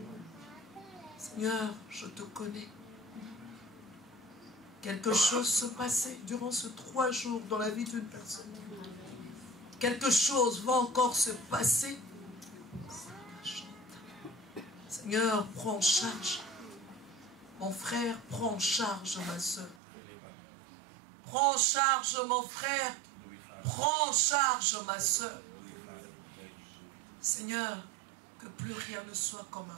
Seigneur, je te connais. Quelque chose se passait durant ces 3 jours dans la vie d'une personne. Quelque chose va encore se passer. Seigneur, prends en charge. Mon frère, prends en charge ma soeur. Prends en charge mon frère. Prends en charge ma soeur. Seigneur, que plus rien ne soit comme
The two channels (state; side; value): drops out; left; at 19.8 s